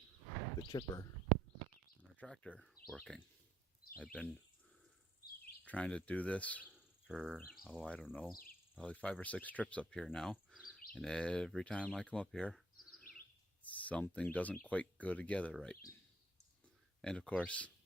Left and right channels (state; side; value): normal; both; correlation 0.69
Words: the chipper on our tractor working. I've been trying to do this for, I don't know, probably 5 or 6 trips up here now. And every time I come up here, something doesn't quite go together right. And of course,